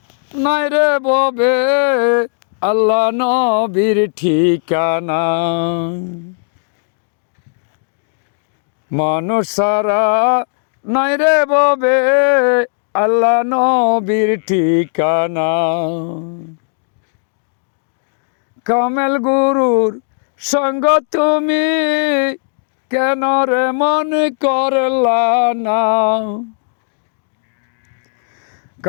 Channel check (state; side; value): silent; right; digital silence